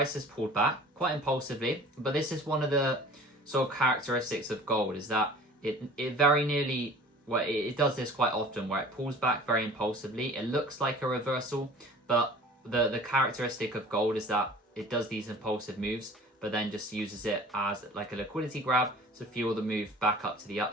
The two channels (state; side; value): normal; both; correlation 0.45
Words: has pulled back quite impulsively, but this is one of the sort of characteristics of gold, is that it very nearly, well, it does this quite often where it pulls back very impulsively. It looks like a reversal, but the characteristic of gold is that it does these impulsive moves, but then just uses it as like a liquidity grab to fuel the move back up to the